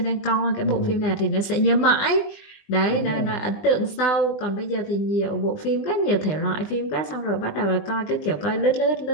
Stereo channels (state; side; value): late; right; 20 ms